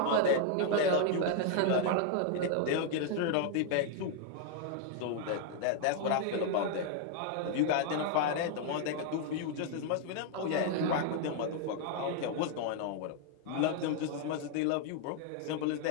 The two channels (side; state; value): both; different; correlation 0.00